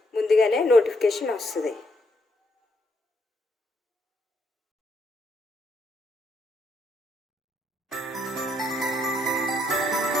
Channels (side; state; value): both; normal; correlation 0.74